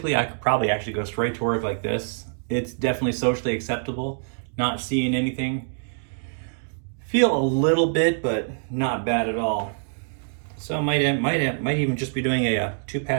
I could probably actually go straight to work like this. It's definitely socially acceptable. Not seeing anything. Feel a little bit, but not bad at all. So might even just be doing a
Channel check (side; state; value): left; silent; digital silence